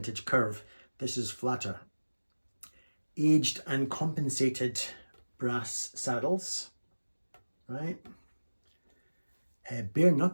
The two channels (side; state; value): both; inverted; correlation -1.00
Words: curve. This is flatter. Aged and compensated brass saddles, right? Bare